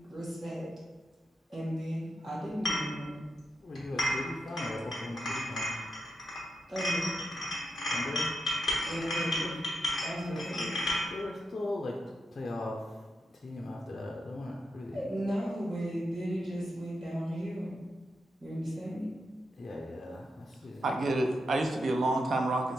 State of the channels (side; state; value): both; normal; correlation 0.85